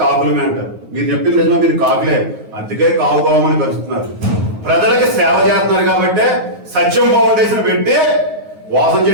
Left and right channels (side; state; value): left; late; 9.5 ms